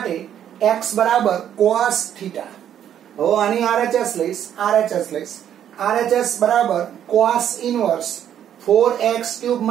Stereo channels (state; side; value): quieter; left; 10.0 dB